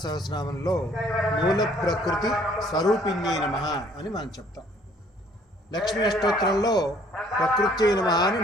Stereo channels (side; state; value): both; normal; correlation 0.60